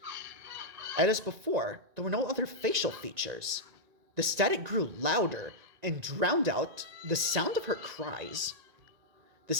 And as before, there were no other facial features. The static grew louder and drowned out the sound of her cries. The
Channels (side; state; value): left; late; 1.9 ms